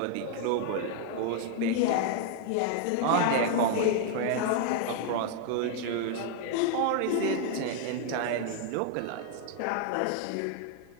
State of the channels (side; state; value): both; different; correlation 0.00